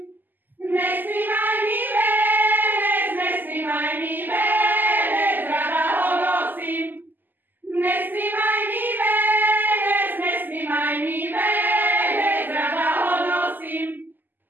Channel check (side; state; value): left; late; 0.089 ms